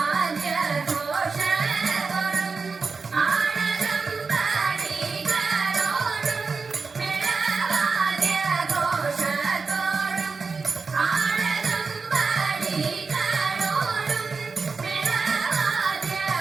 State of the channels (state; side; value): quieter; left; 4.6 dB